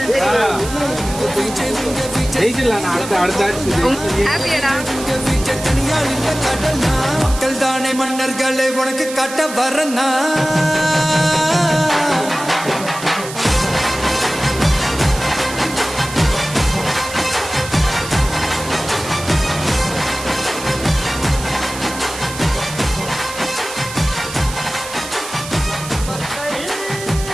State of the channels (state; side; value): noise; right; hiss, 11 dB below the sound